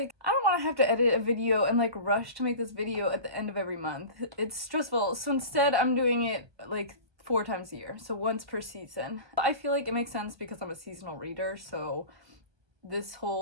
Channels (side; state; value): left; late; 1.2 ms